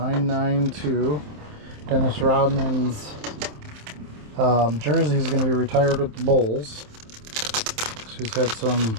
Dennis Rodman's jersey is going to be retired with the Bulls. So he's had some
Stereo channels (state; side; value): late; left; 27 ms